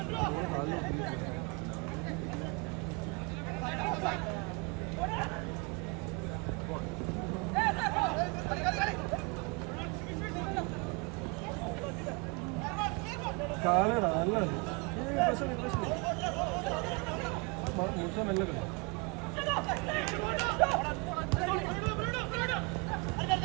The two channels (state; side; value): quieter; left; 29.8 dB